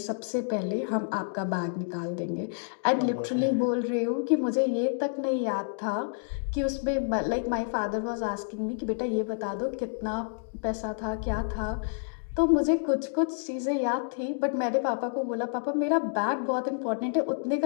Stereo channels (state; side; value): silent; right; digital silence